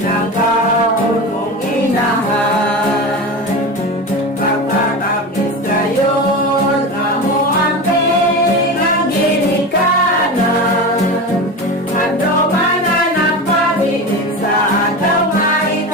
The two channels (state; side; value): normal; both; correlation 0.25